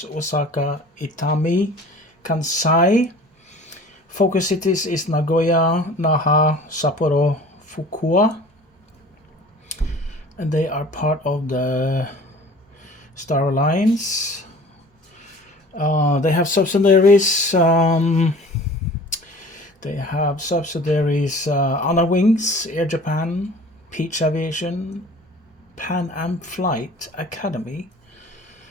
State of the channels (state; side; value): normal; both; correlation 0.45